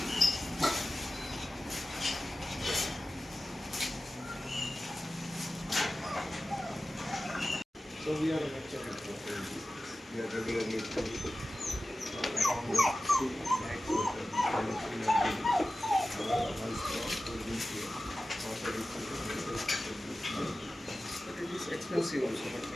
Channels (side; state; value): both; normal; correlation 0.95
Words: So we are regularly. Expensive also, but